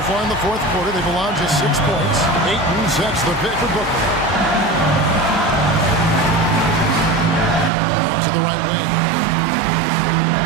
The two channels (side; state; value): left; drops out; at 7.7 s